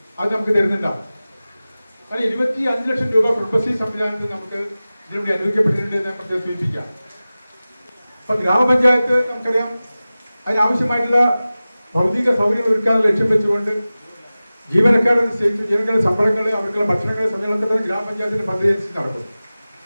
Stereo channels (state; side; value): inverted; both; correlation -0.97